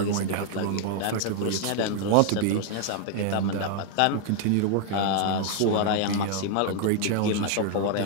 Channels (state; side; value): different; both; correlation 0.00